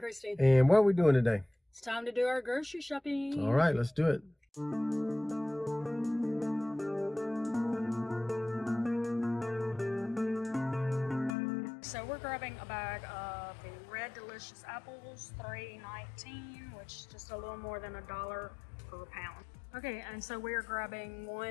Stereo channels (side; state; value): right; drops out; at 11.4 s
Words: And what are we doing today? It's time to do our grocery shopping. All right, let's do it. So we're grabbing a bag of the Red Delicious apples, $3.19, which is just a little more than $1 per pound. Okay, and so we're grabbing